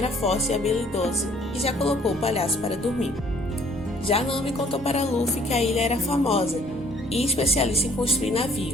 forte e habilidoso e já colocou o palhaço para dormir. Já Nami contou para Luffy que a ilha era famosa e especialista em construir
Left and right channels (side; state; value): both; normal; correlation 0.59